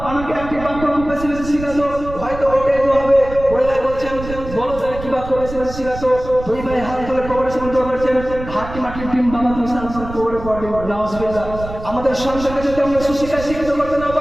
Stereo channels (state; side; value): noise; right; rumble, 11 dB below the sound